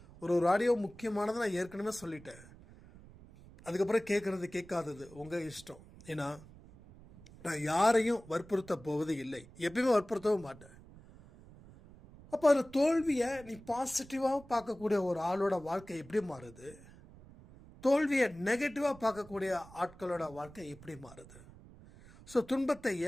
ஒரு ஆடியோ முக்கியமானதை நான் ஏற்கனவே சொல்லிட்டேன். அதுக்கப்புறம் கேட்கறது கேட்காதது உங்கள் இஷ்டம். ஏன்னா நான் யாரையும் வற்புறுத்த போவது இல்லை, எப்பயுமே வற்புறுத்தவும் மாட்டேன். அப்போ அந்த தோல்வியை நீ பாசிட்டிவாக பார்க்கக்கூடிய ஒரு ஆளோட வாழ்க்கை எப்படி மாறுது, தோல்வியை நெகட்டிவாக பார்க்கக்கூடிய ஆட்களோட வாழ்க்கை எப்படி மாறுது? ஸோ துன்பத்தை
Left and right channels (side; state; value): right; noise; rumble, 20 dB below the sound